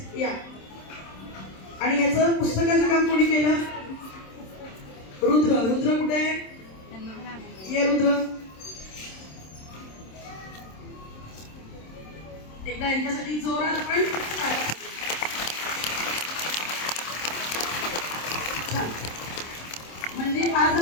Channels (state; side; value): late; right; 27 ms